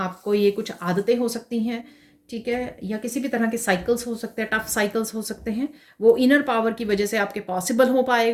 ये कुछ आदतें हो सकती हैं, ठीक है, या किसी भी तरह के साइकिल्स हो सकते हैं, टफ साइकिल्स हो सकते हैं, वो इनर पावर की वजह से आपके पॉसिबल हो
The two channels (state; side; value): identical; both; correlation 1.00